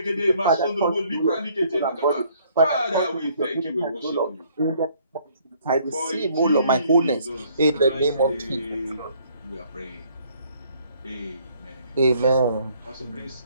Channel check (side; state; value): both; inverted; correlation -0.63